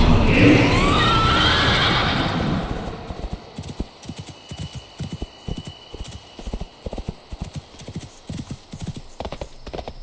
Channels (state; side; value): identical; both; correlation 1.00